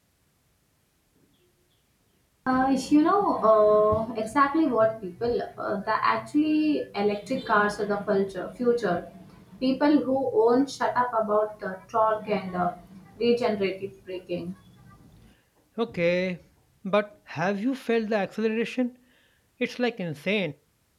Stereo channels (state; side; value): identical; both; correlation 1.00